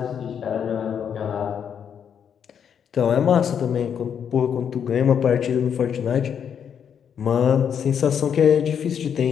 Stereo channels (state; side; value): quieter; right; 7.9 dB